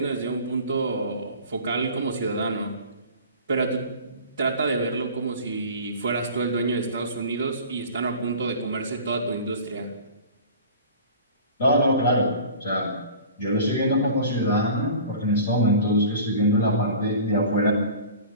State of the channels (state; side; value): inverted; both; correlation -0.41